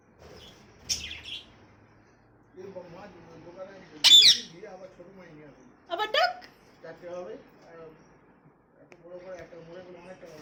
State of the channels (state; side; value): identical; both; correlation 1.00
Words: আবার ডাক। চারটে হবে এত বড় করে একটা মোড়ে করে অনেক টাকা